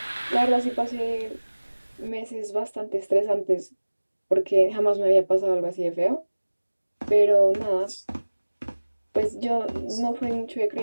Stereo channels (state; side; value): inverted; both; correlation -1.00